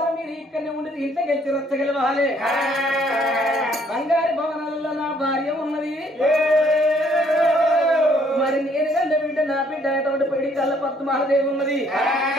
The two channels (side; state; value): both; normal; correlation 0.64